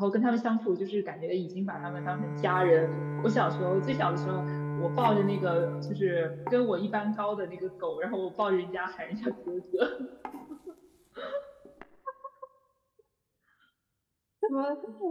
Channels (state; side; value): identical; both; correlation 1.00